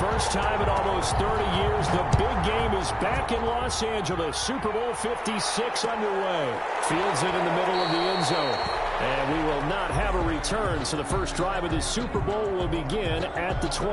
time in almost 30 years, the big game is back in Los Angeles. Super Bowl 56 underway. Fields it in the middle of the end zone. And we will not have a return, so the first drive of the Super Bowl will begin at the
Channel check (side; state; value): both; identical; correlation 1.00